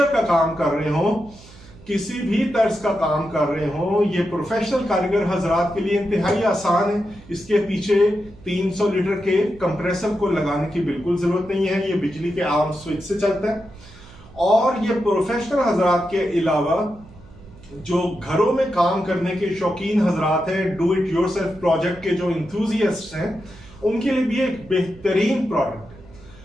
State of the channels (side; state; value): right; noise; hum, 22 dB below the sound